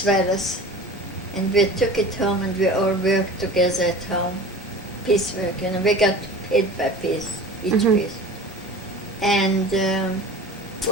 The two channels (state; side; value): normal; both; correlation 0.38